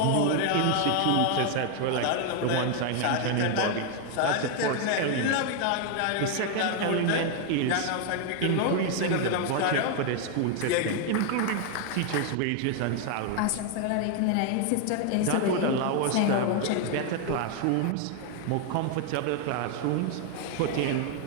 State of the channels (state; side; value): different; both; correlation 0.01